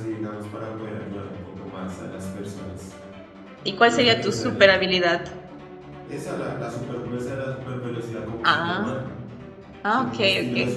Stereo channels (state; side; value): identical; both; correlation 1.00